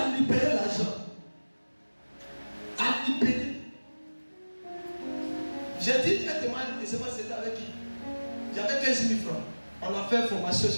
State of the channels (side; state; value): both; inverted; correlation -1.00